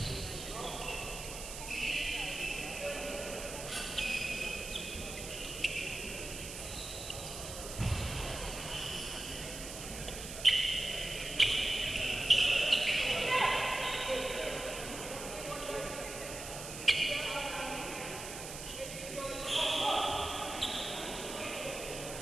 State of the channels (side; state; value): right; noise; hiss, 9 dB below the sound